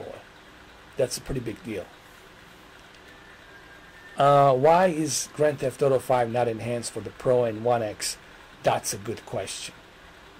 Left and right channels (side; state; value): both; identical; correlation 1.00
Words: that's a pretty big deal. Why is Grand Theft Auto 5 not enhanced for the Pro and One X? That's a good question.